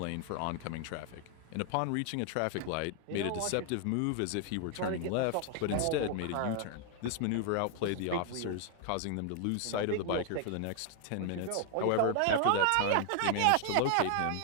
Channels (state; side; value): different; both; correlation 0.00